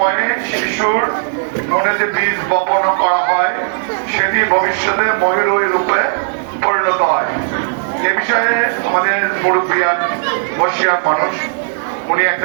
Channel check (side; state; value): left; silent; digital silence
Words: শিশুর মনে যে বীজ বপন করা হয়, সেটি ভবিষ্যতে ময়ূরী রূপে পরিণত হয়। এ বিষয়ে আমাদের মুরব্বিয়ান বসিয়ার মানুষ উনি